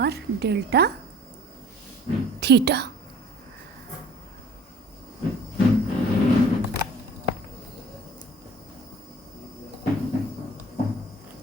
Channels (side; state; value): both; normal; correlation 0.49